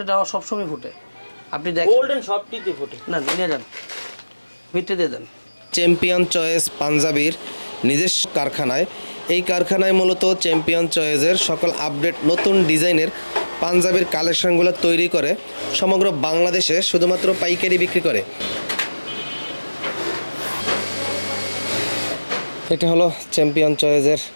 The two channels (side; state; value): both; inverted; correlation -1.00